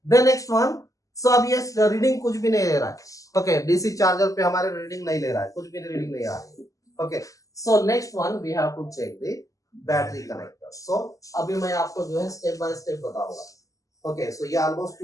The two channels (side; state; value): right; late; 0.16 ms